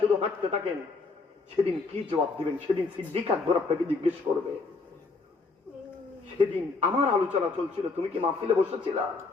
শুধু হাঁটতে থাকেন সেদিন কি জবাব দিবেন? সেদিন সিদ্দিক আকবর আপনাকে জিজ্ঞেস করবে, সেদিন আমার আলোচনা চলছিল, তুমি কি মাহফিলে বসেছিল?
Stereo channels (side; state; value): right; quieter; 4.0 dB